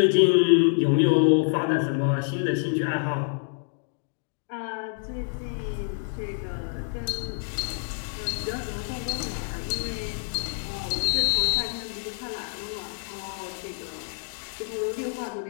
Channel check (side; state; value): right; silent; 59 dB below the other